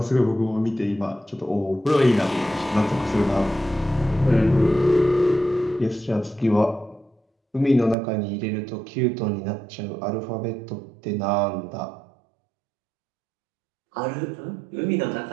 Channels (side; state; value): left; drops out; at 8.0 s